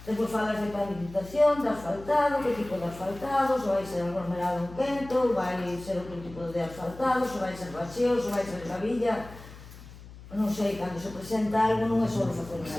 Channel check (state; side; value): noise; left; hum, 17 dB below the sound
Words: depois falas de pavimentación, de asfaltado, que tipo de asfaltado, se vai ser aglomerado un quento, vai ser outro tipo de asfaltado, se vai ser bacheo, se vai ser gravilla, non sei, cando se presenta algo non é só facer unha